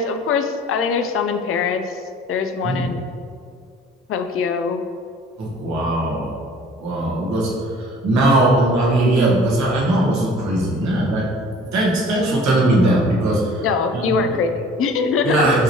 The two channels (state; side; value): normal; both; correlation 0.50